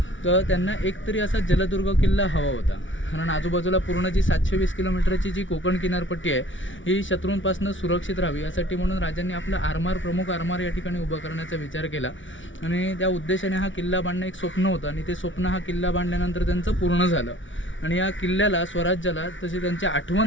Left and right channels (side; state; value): right; late; 0.56 ms